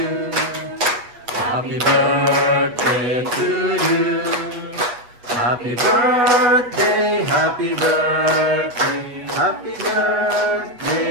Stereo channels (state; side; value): late; left; 8.3 ms